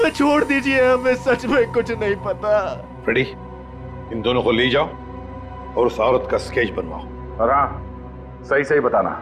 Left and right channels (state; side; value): identical; both; correlation 1.00